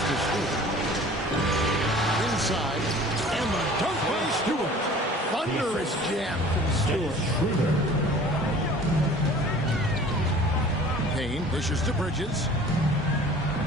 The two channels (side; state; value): both; normal; correlation 0.46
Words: to Stewart. Inside. And the dunk by Stewart. Thunderous jam from Stewart. Payne dishes to Bridges.